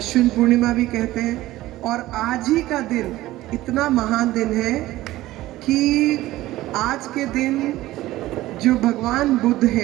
पूर्णिमा भी कहते हैं। और आज ही का दिन इतना महान दिन है कि आज के दिन जो भगवान बुद्ध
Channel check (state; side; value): quieter; left; 16.4 dB